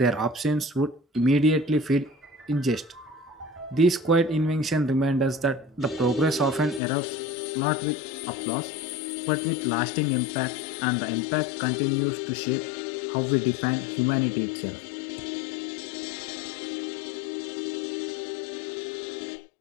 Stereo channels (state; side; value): drops out; right; at 6.8 s